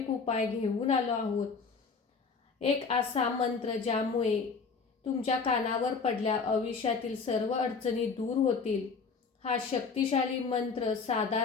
उपाय घेऊन आलो आहोत. एक असा मंत्र ज्यामुळे तुमच्या कानावर पडल्या आयुष्यातील सर्व अडचणी दूर होतील. हा शक्तिशाली मंत्र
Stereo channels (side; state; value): right; quieter; 5.0 dB